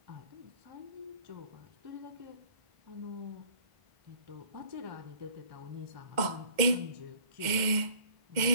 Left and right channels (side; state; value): left; late; 2.1 ms